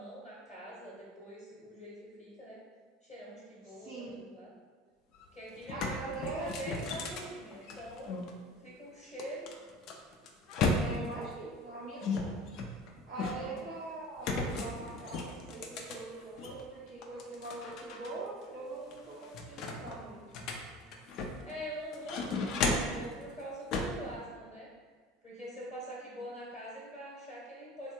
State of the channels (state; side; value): normal; both; correlation 0.38